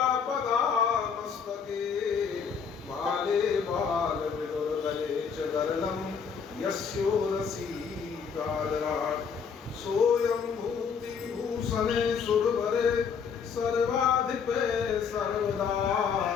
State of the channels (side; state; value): right; quieter; 6.4 dB